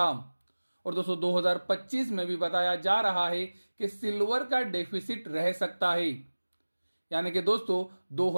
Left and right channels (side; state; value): both; inverted; correlation -1.00